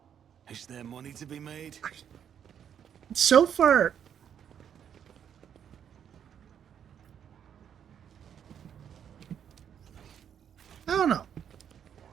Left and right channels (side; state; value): left; quieter; 8.7 dB